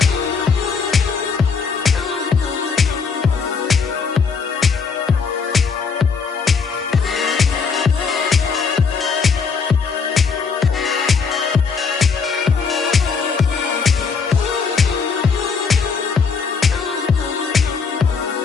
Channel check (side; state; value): right; quieter; 5.4 dB